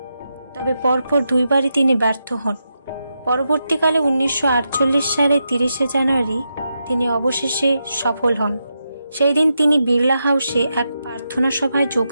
তবে পরপর দুইবারই তিনি ব্যর্থ হন। পরবর্তীকালে 1948 সালে 30 জানুয়ারি তিনি অবশেষে সফল হন। সেই দিন তিনি বিড়লা হাউসে এক প্রার্থনা সভায়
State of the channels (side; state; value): both; inverted; correlation -0.86